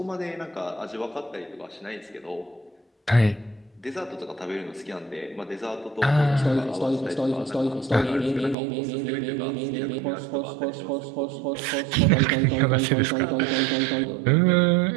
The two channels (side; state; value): left; drops out; at 8.6 s